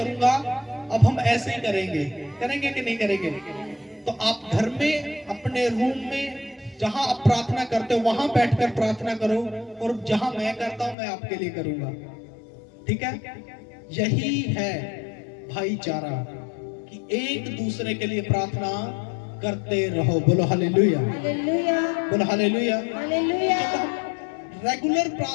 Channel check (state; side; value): drops out; right; at 11.0 s